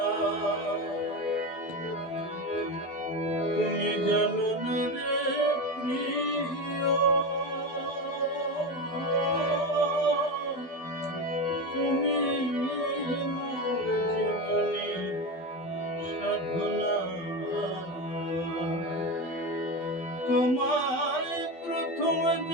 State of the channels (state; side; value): late; right; 12 ms